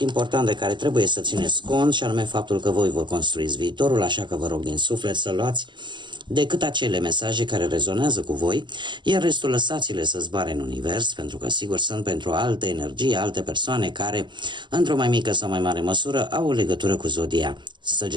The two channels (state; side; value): late; left; 0.22 ms